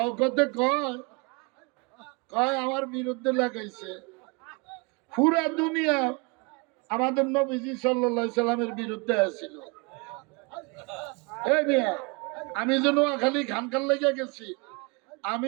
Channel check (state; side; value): quieter; left; 29.3 dB